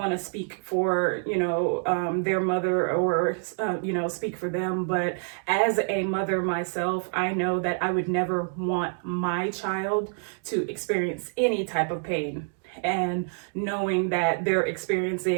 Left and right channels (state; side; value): silent; left; 56 dB below the other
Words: to speak for, their mother or, speak for them. But as a mother myself, I know that I would never want my child to experience any type of pain. And knowing that they're